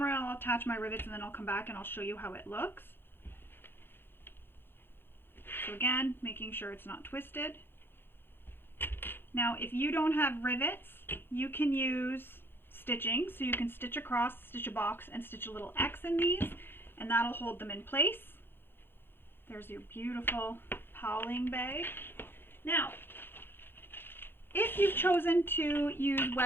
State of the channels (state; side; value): late; right; 0.10 ms